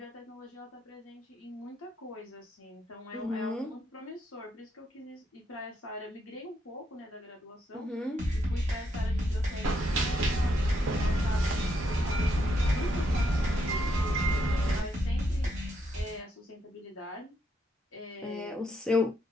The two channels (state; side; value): normal; both; correlation 0.77